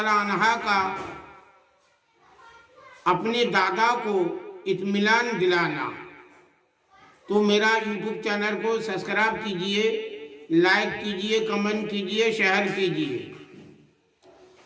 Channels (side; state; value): both; identical; correlation 1.00